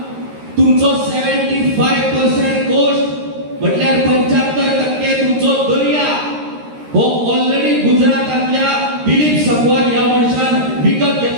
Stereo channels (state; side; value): late; left; 13 ms